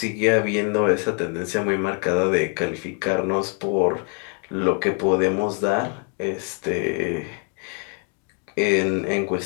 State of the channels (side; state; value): right; quieter; 38.1 dB